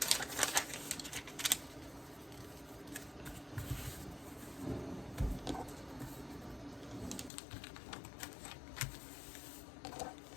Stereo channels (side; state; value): right; drops out; at 7.3 s